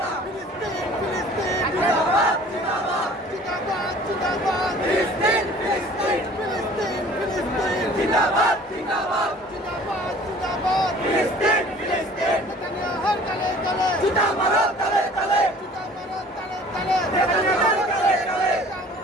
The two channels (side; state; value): both; normal; correlation 0.49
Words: জিন্দাবাদ জিন্দাবাদ জিন্দাবাদ ফিলিস্তিন ফিলিস্তিন ফিলিস্তিন ফিলিস্তিন জিন্দাবাদ জিন্দাবাদ জিন্দাবাদ জিন্দাবাদ ফিলিস্তিন ফিলিস্তিন নেতানিয়াহুর তলে তলে জুতা মারো তলে তলে জুতা মারো তলে তলে নেতানিয়াহুর তলে